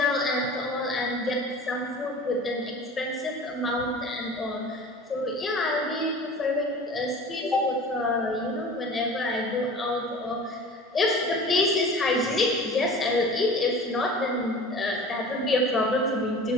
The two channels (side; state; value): both; normal; correlation 0.40